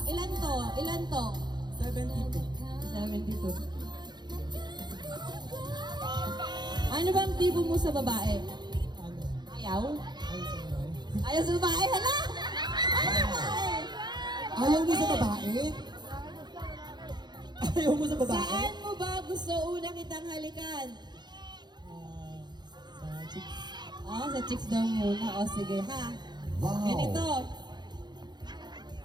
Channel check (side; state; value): left; late; 0.21 ms